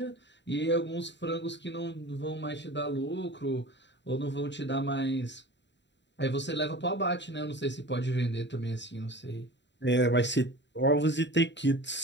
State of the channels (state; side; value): late; right; 0.52 ms